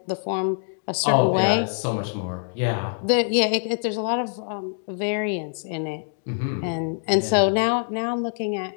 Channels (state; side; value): silent; right; digital silence